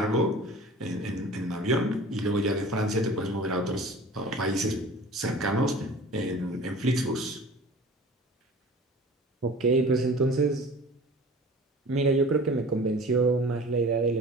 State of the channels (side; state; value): both; normal; correlation 0.42